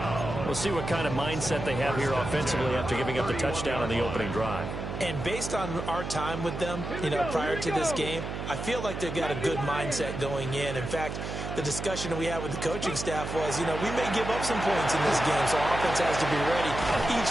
We'll see what kind of mindset they have here offensively after giving up the touchdown on the opening drive. And based on our time with them, prior to this game, I feel like they've got a good mindset going in. In fact, the discussion we had with the coaching staff was, we may give up some points in this game, so our offense has to be ready each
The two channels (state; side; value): noise; right; hum, 6 dB below the sound